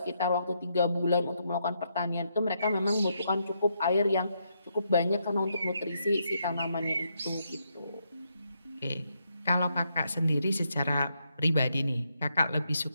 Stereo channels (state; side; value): inverted; both; correlation -0.79